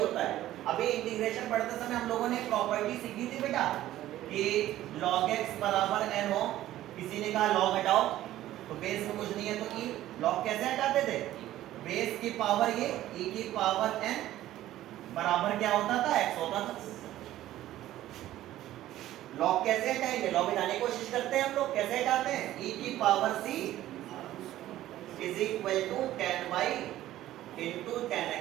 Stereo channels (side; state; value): left; quieter; 14.1 dB